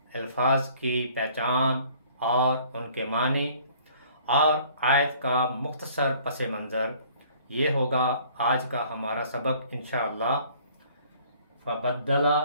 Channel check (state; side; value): inverted; both; correlation -0.56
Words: الفاظ کی پہچان اور ان کے معنی، اور آیت کا مختصر پس منظر، یہ ہوگا آج کا ہمارا سبق انشاءاللہ. فبدلا،